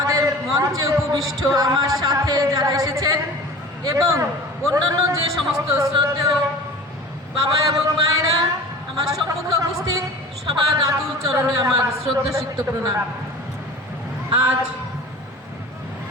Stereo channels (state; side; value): normal; both; correlation 0.39